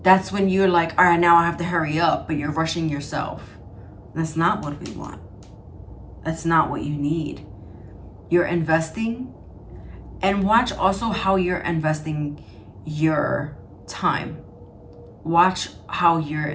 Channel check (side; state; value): both; identical; correlation 1.00